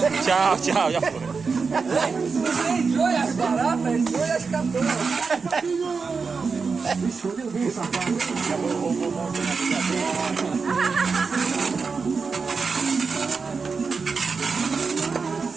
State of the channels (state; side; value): quieter; left; 5.0 dB